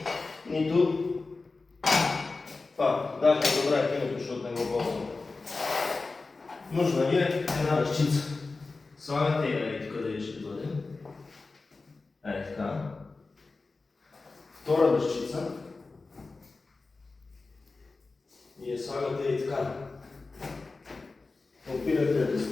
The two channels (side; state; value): right; quieter; 3.8 dB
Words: нито това. Даже добра е киното, защото не го ползвам. Нужна ви е една ръчица. Слагате я и тук да ще бъде. Така. Втора ръчица. И я слагате и така. Опирате до